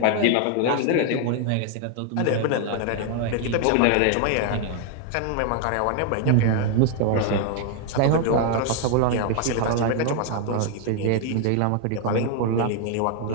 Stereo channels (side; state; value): both; different; correlation 0.00